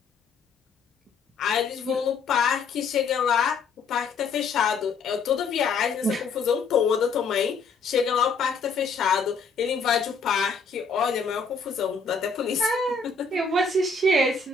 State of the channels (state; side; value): quieter; right; 4.6 dB